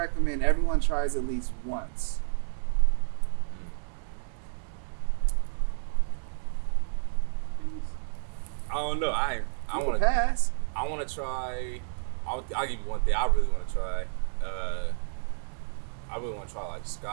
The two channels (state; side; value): silent; left; digital silence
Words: everyone tries at least once? I don't know. I want to pass. I want to try. I'll give you one thing. I really want to try. I really want to try like